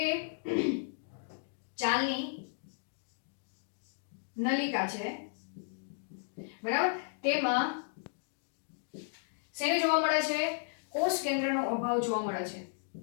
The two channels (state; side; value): silent; right; digital silence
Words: ચાલની નલિકા છે, બરાબર, તેમાં શેને જોવા મળે છે? કોષ કેન્દ્રનો અભાવ જોવા મળે છે.